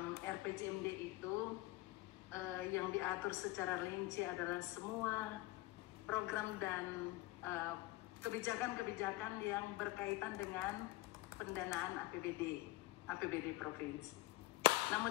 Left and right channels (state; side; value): quieter; right; 19.4 dB